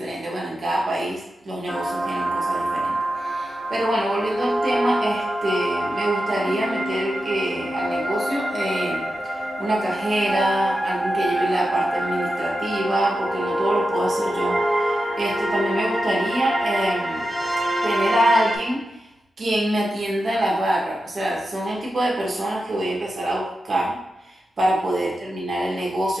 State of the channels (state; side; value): normal; both; correlation 0.90